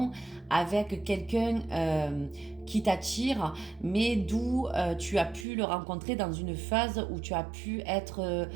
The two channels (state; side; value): drops out; left; at 5.5 s